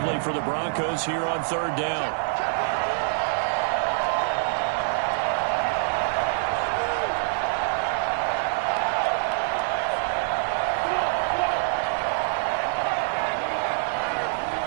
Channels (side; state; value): left; silent; digital silence